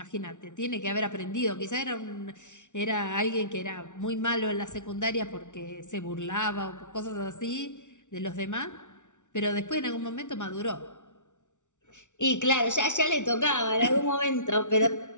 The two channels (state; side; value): late; right; 0.86 ms